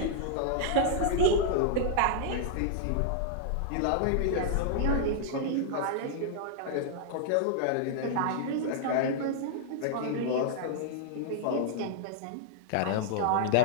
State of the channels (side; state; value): both; different; correlation -0.01